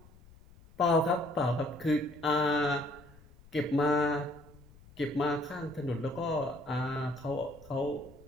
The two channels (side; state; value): left; noise; rumble, 24 dB below the sound